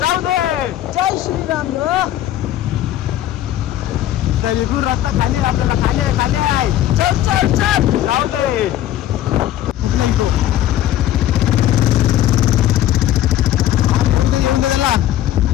दे, जय श्रीराम. तर इथून रस्ता खाली आहे, आपल्याला खाली आहे, खाली आहे. चल चल चल, जाऊ दे. येऊन दे त्याला.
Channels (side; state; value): right; quieter; 12.7 dB